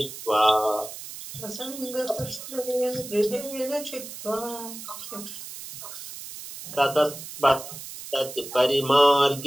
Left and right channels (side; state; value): right; noise; hiss, 11 dB below the sound